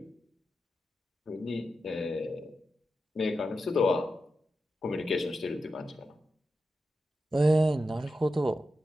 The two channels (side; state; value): both; normal; correlation 0.90